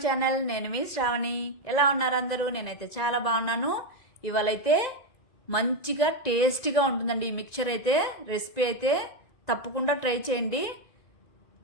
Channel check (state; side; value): late; right; 1.9 ms